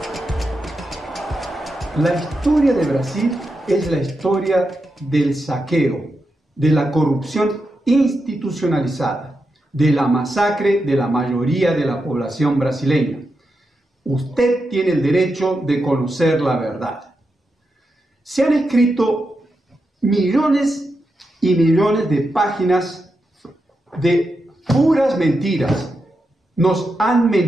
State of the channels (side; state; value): both; normal; correlation 0.87